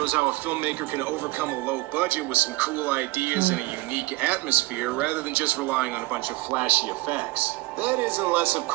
how a filmmaker can overcome a low budget with some cool ideas and a unique atmosphere rather than just relying on a bunch of flashy effects. That is unless, of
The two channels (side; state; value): left; quieter; 21.1 dB